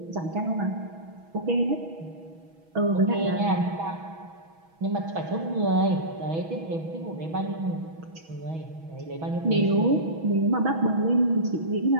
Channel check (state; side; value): late; left; 6.2 ms